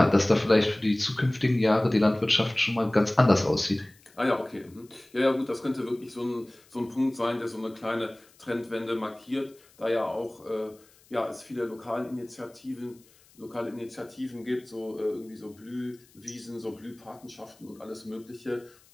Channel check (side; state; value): left; noise; hiss, 29 dB below the sound